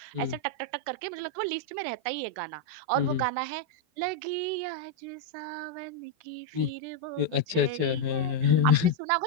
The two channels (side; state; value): left; late; 12 ms